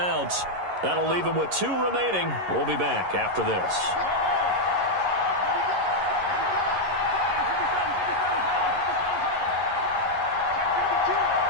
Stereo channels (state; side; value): late; left; 11 ms